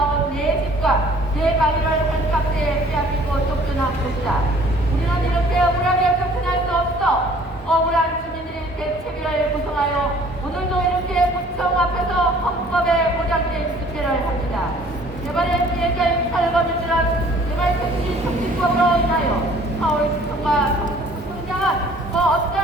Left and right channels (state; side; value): normal; both; correlation 0.54